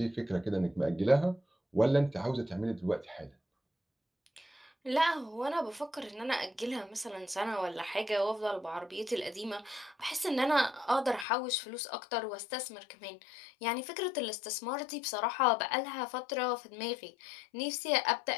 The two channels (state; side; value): drops out; right; at 11.2 s